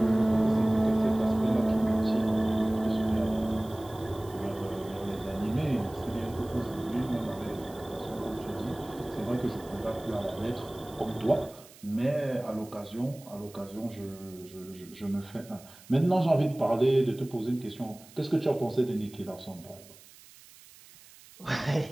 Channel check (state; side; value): noise; right; hiss, 22 dB below the sound